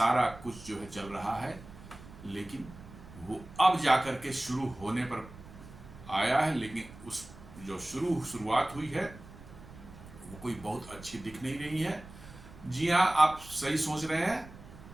कुछ जो है चल रहा है। लेकिन वो अब जाकर के शुरू होने पर आया है, लेकिन उस जो शुरुआत हुई है वो कोई बहुत अच्छी दिख नहीं रही है। जी हाँ, आप सही सोच रहे हैं,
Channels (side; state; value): right; noise; rumble, 17 dB below the sound